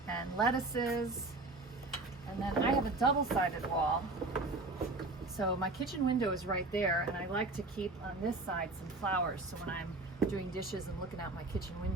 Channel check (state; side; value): quieter; left; 3.2 dB